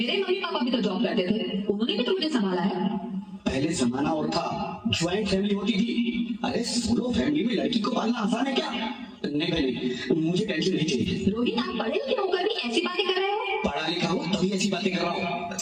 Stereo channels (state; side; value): identical; both; correlation 1.00